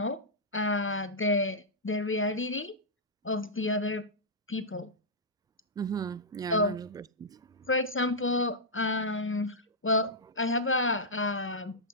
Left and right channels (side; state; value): both; normal; correlation -0.10